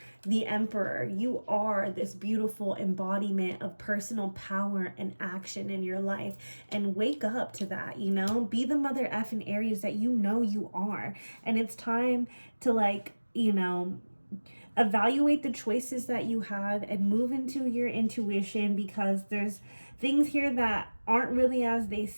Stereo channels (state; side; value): inverted; both; correlation -1.00